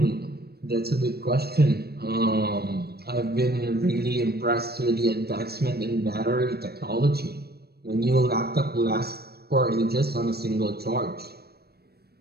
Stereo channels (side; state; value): left; late; 0.46 ms